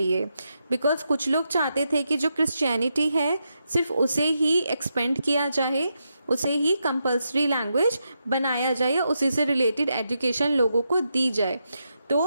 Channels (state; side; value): inverted; both; correlation -0.84